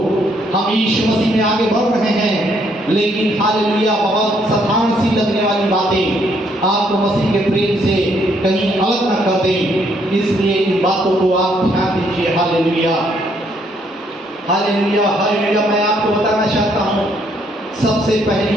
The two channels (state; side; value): normal; both; correlation 0.70